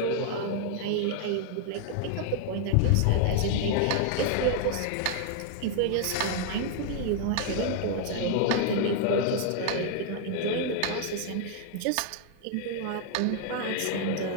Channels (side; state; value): both; different; correlation 0.00